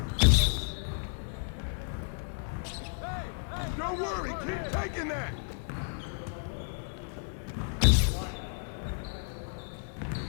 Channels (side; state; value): right; silent; digital silence